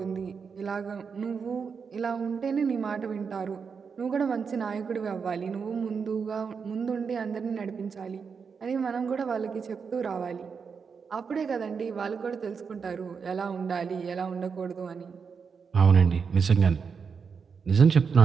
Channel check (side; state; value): left; quieter; 5.9 dB